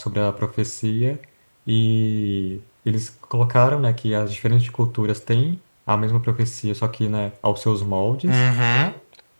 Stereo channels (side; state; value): both; inverted; correlation -1.00